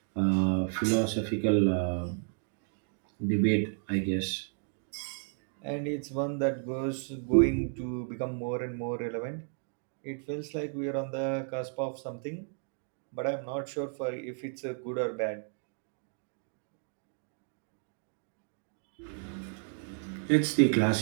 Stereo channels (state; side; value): silent; left; 56 dB below the other